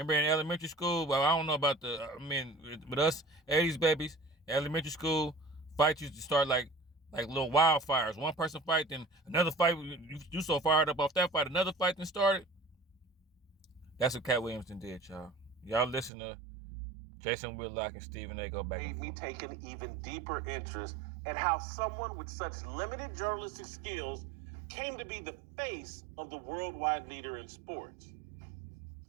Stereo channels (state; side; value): drops out; left; at 16.1 s